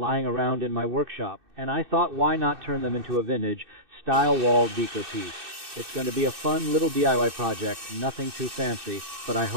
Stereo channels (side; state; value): left; late; 2.6 ms